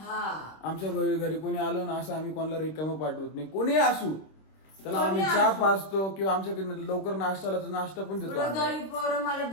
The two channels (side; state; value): right; late; 26 ms